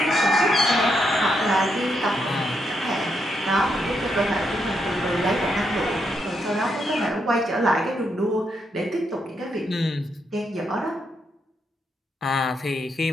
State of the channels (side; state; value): both; normal; correlation 0.79